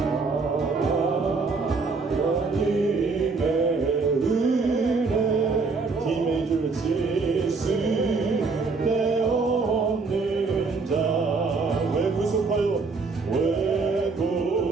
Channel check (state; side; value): quieter; left; 4.3 dB